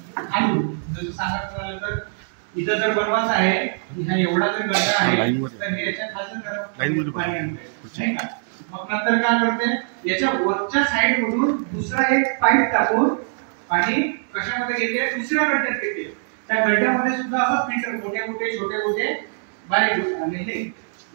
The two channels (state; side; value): silent; left; digital silence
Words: खालून. जसं सांगायचं झालं तर इथं जर बनवायचं आहे, हा एवढा जर गड्डा आहे तर हे याच्या खालच्या थरातून पाणी आणते, नाही का. मग नंतर काय करते? याच्या वरच्या साइड मधून दुसरा एक पाईप टाकून पाणी कशामध्ये घेते? दुसऱ्या गड्ड्यात घेते. त्या गड्ड्यामध्ये सुद्धा असं फिल्टर, मोठे मोठे छोटे मोठे बारीक आणि हे